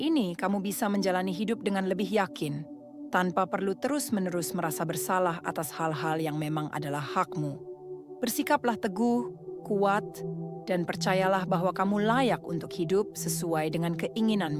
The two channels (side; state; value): both; identical; correlation 1.00